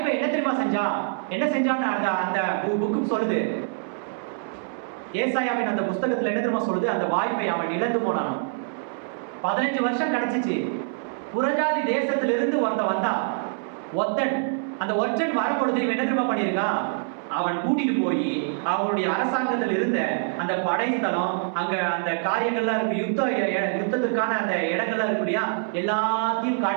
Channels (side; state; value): left; silent; 62 dB below the other